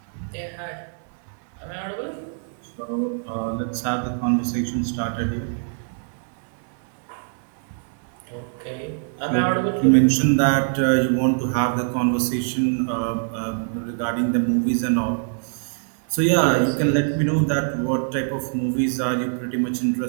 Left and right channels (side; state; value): left; silent; 61 dB below the other